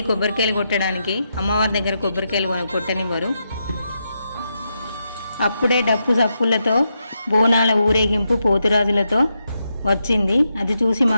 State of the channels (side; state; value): both; inverted; correlation -0.84